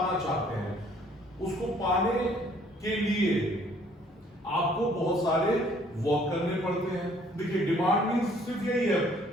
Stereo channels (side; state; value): both; normal; correlation 0.60